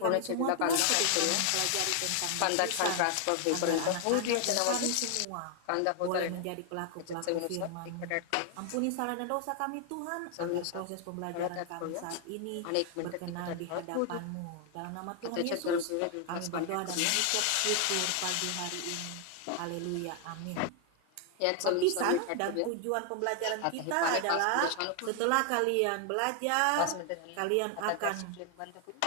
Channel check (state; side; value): different; both; correlation 0.00